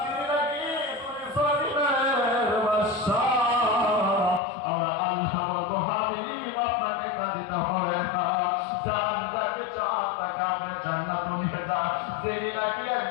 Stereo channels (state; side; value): drops out; right; at 4.4 s